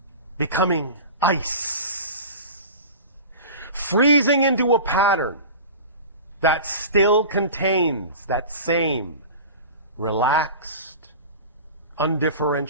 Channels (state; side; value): inverted; both; correlation -0.35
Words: becoming ice, freezing into a pattern that still contains that same relaxed,